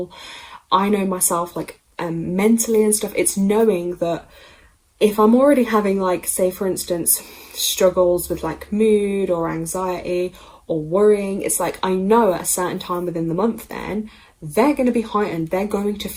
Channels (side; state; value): both; identical; correlation 1.00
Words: I know myself, like mentally and stuff, it's knowing that if I'm already having, like, say for instance, struggles with like mood or anxiety or worrying, it's like I know at a certain time within the month then they're going to be heightened. They're going to